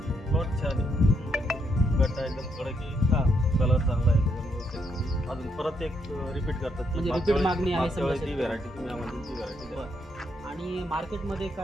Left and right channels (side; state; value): both; normal; correlation 0.76